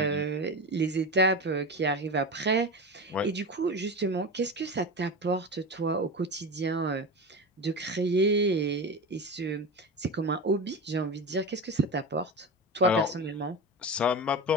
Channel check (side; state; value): both; normal; correlation 0.24